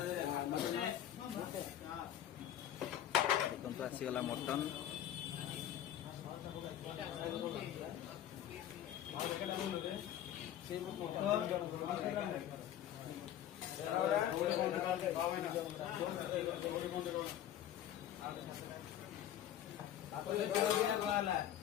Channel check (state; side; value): quieter; right; 11.3 dB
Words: ଦେଖନ୍ତୁ ଆସିଗଲା ମଟନ